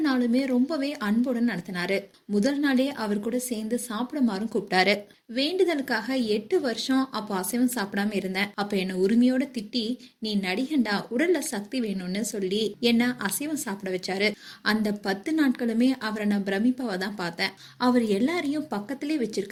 நாளுமே ரொம்பவே அன்புடன் நடத்தினாரு. முதல் நாளே அவர் கூட சேர்ந்து சாப்பிடுமாறும் கூப்பிட்டாரு. வேண்டுதலுக்காக 8 வருஷம் அப்போ அசைவம் சாப்பிடாம இருந்தேன். அப்ப என்ன உரிமையோட திட்டி, நீ நடிகண்டா, உடல்ல சக்தி வேணும்னு சொல்லி என்ன அசைவம் சாப்பிட வச்சாரு. அந்த 10 நாட்களுமே அவரை நான் பிரமிப்பாவ தான் பார்த்தேன். அவர் எல்லாரையும் பக்கத்திலே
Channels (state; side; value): identical; both; correlation 1.00